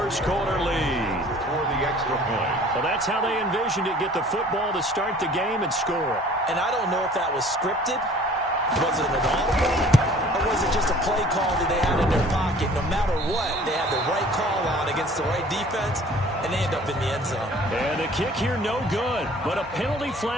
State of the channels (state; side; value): normal; both; correlation 0.50